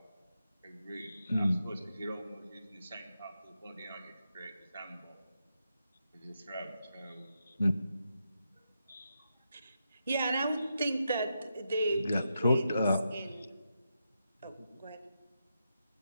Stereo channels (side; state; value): both; inverted; correlation -0.85